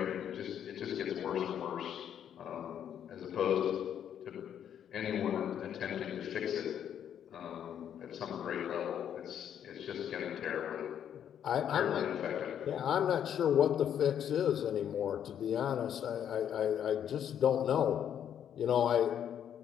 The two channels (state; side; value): quieter; right; 9.4 dB